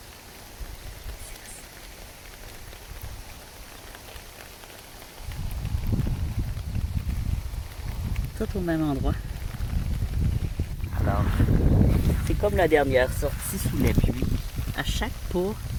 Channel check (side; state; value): both; identical; correlation 1.00